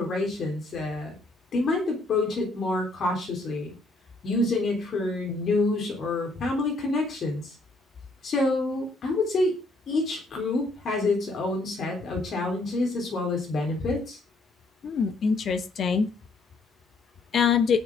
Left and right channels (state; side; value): quieter; right; 3.0 dB